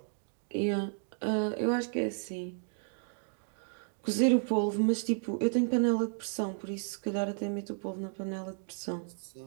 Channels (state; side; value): silent; left; digital silence